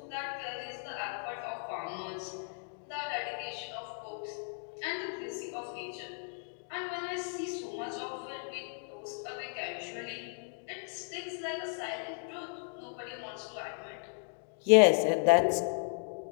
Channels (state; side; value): silent; right; 54 dB below the other